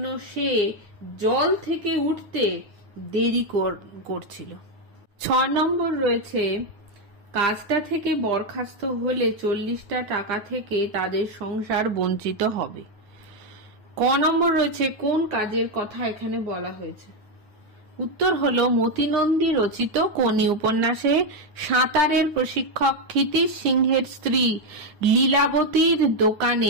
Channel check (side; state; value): left; late; 9.5 ms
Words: সে জল থেকে উঠতে দেরি করছিল। 6 নম্বর রয়েছে, কাজটা থেকে বরখাস্ত হলে 40টা টাকা থেকে তাদের সংসার বঞ্চিত হবে। ক নম্বর রয়েছে, কোন কাজের কথা এখানে বলা হয়েছে? উত্তর হলো, মতিনন্দী রচিত কোনি উপন্যাসে সাঁতারের প্রশিক্ষক ক্ষিতিশ সিংহের স্ত্রী লীলাবতীর